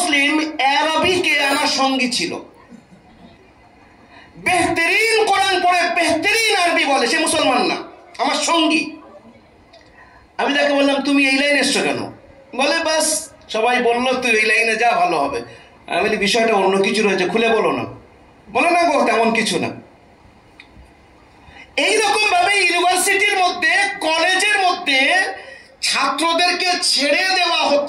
আরবিকে আমার সঙ্গী ছিল। বেহতরিন কোরআন পড়ে, বেহতরিন আরবি বলে, সে মুসলমান না, আমার সঙ্গী। আমি তাকে বললাম তুমি এই লাইনে এসছো কেন? বলে বাস সবাই বললো তুই এই লাইনে যা, ভালো হবে। আমি বলি বিষয়টা অন্য কিছু রয়েছে, খুলে বলো না। বলে না গো তেমন কিছু না। এইরকম ভাবে ইউনিভার্সিটির মধ্যে, কলেজের মধ্যে ছাত্রদেরকে ছেড়ে দেওয়া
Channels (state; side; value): identical; both; correlation 1.00